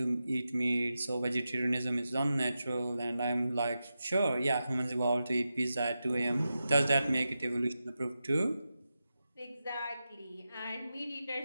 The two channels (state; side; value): inverted; both; correlation -0.91